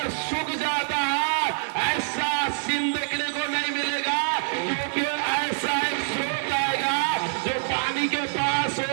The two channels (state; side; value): silent; left; 61 dB below the other